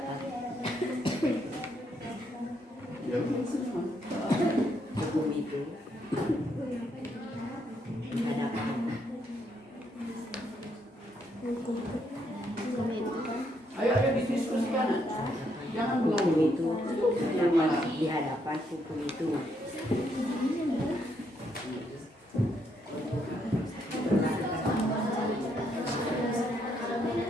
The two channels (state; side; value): normal; both; correlation 0.75